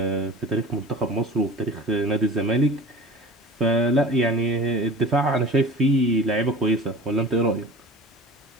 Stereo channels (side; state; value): both; normal; correlation 0.39